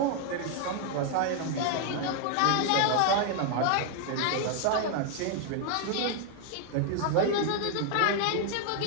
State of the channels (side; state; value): both; different; correlation 0.00